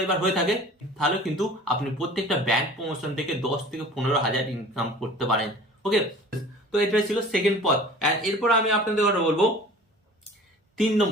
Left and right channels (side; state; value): both; normal; correlation 0.44